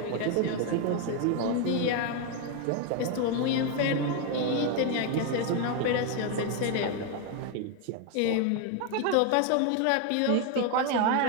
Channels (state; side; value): different; both; correlation 0.01